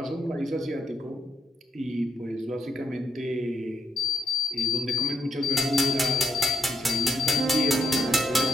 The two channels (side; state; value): both; normal; correlation 0.76